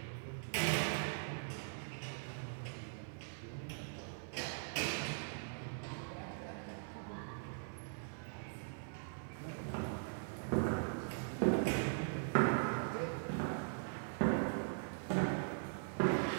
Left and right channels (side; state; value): left; silent; 50 dB below the other